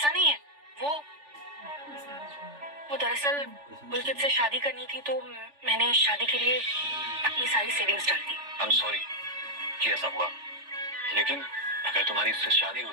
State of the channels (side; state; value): left; late; 3.4 ms